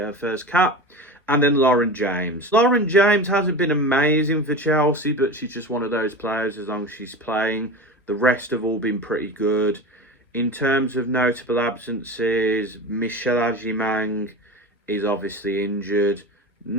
her first cap. And then Lauren James. Lauren James hasn't been amazing for Chelsea, but she's just one of those players as long as she's playing. The rest have all been pretty good. In terms of notable absences, Michelle Agimang is obviously injured.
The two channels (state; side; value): normal; both; correlation 0.29